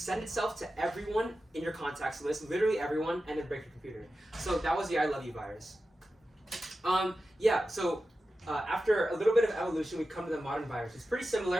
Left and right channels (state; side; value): normal; both; correlation 0.92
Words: itself to everyone in your contacts list, literally everyone, and then break your computer. So that was the I Love You virus. Yeah, so after a little bit of evolution, we come to the modern virus. It's pretty